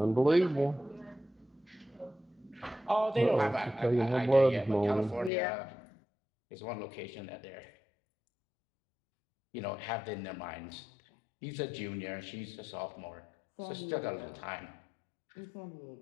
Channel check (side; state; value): right; drops out; at 5.3 s